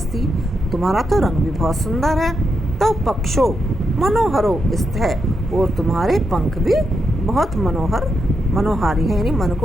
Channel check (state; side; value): normal; both; correlation 0.83